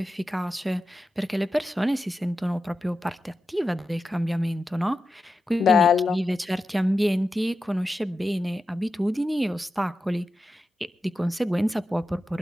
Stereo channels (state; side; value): normal; both; correlation 0.91